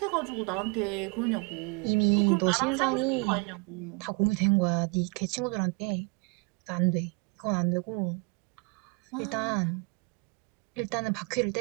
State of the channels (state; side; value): quieter; left; 30.1 dB